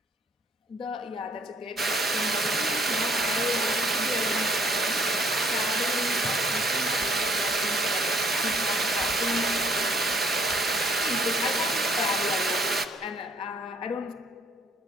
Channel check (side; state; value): both; normal; correlation 0.63